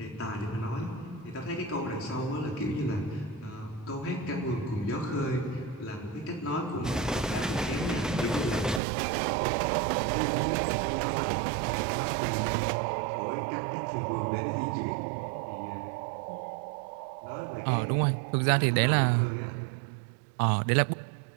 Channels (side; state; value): left; drops out; at 8.8 s